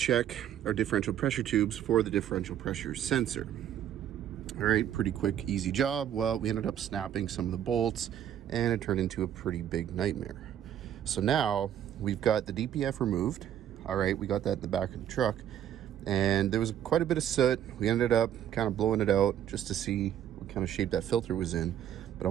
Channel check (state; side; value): quieter; left; 10.5 dB